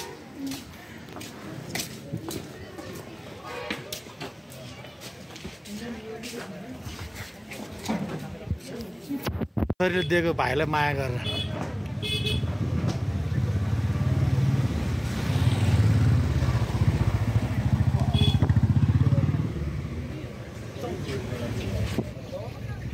दिएको भाइलाई माया गरेर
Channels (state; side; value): identical; both; correlation 1.00